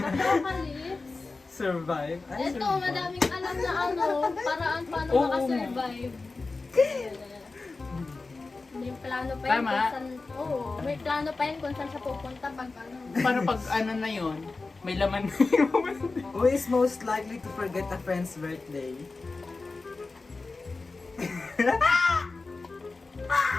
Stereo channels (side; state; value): right; quieter; 3.7 dB